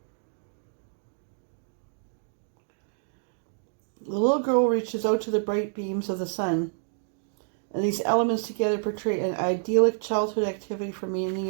the little girl reaches out to the bright beams of the sun, and these elements together portray an idyllic childhood activity for many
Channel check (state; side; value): silent; left; digital silence